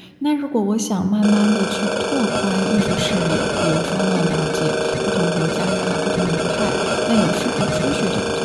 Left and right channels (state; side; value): identical; both; correlation 1.00